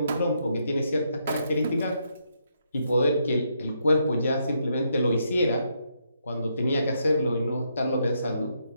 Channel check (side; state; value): both; inverted; correlation -0.77